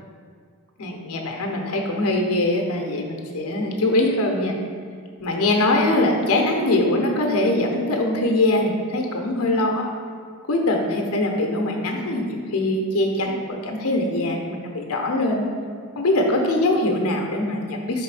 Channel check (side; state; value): both; normal; correlation 0.13